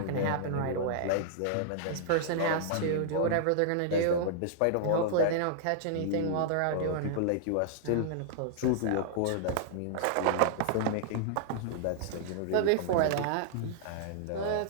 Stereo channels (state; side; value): different; both; correlation -0.01